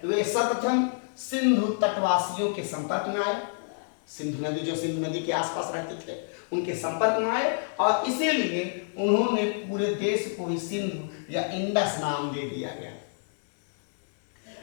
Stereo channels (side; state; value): right; silent; 59 dB below the other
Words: वे सर्वप्रथम सिंधु तटवासियों के संपर्क में आए, सिंधु नदी, जो सिंधु नदी के आसपास रहते थे उनके संपर्क में आए, और इसीलिए उन्होंने पूरे देश को ही सिंधु या इंडस नाम दे दिया गया।